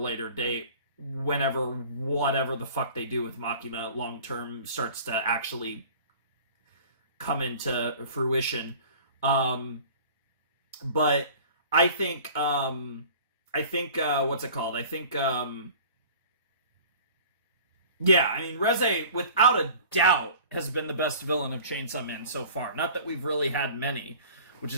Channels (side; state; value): both; inverted; correlation -0.45